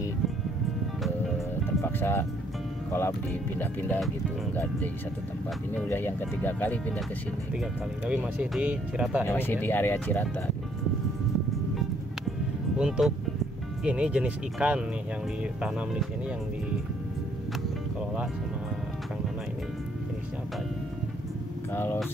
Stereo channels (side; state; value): both; normal; correlation 0.67